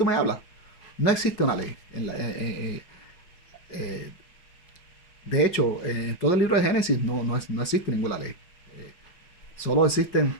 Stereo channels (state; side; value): late; right; 5.5 ms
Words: me hablas? No existe una ley. Eh, de hecho, en todo el libro de Génesis no existe ninguna ley. Solo existen